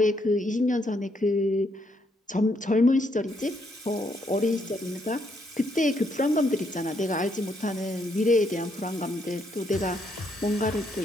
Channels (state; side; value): normal; both; correlation 0.74